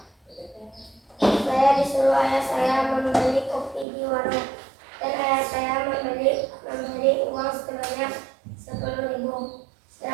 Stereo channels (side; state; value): left; drops out; at 3.9 s